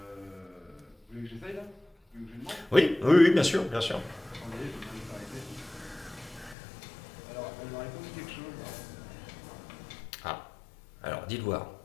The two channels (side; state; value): right; drops out; at 6.6 s